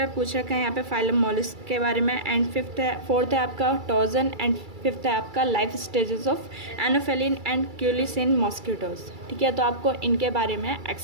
पूछ रखा है यहाँ पे फाइलम मोलस्क के बारे में, एंड फोर्थ है आपका टॉर्जन, एंड फिफ्थ है आपका life stages of anopheline and culex in mosquitoes. ठीक है, तो आपको इनके बारे में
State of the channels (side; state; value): left; late; 2.3 ms